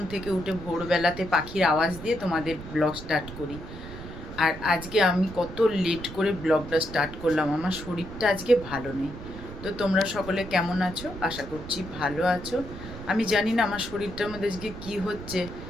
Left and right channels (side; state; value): right; noise; rumble, 12 dB below the sound